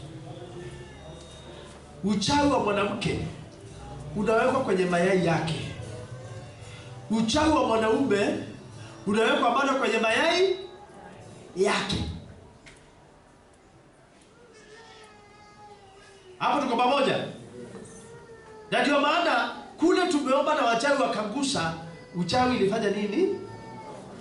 Uchawi wa mwanamke unawekwa kwenye mayai yake. Uchawi wa mwanaume unawekwa bado kwenye mayai yake. Hapo tuko pamoja? Na ndio maana kule tumeomba na wachawi wakangusa, uchawi ilifanya nini?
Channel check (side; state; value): both; identical; correlation 1.00